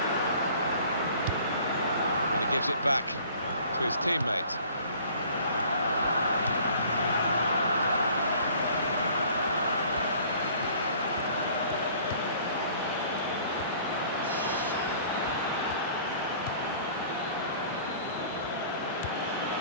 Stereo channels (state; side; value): inverted; both; correlation -0.52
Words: And he gives it back to his teammate.